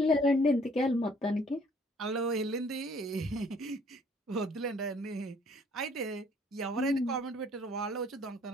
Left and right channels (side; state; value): both; normal; correlation 0.59